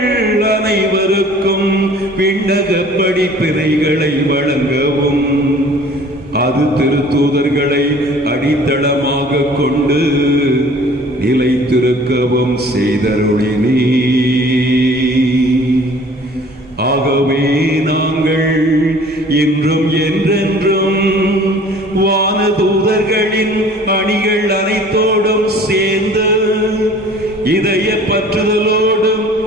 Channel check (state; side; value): normal; both; correlation 0.50